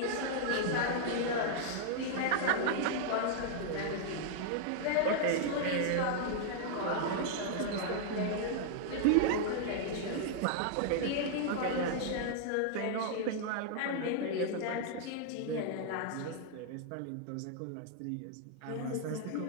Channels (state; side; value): different; both; correlation -0.01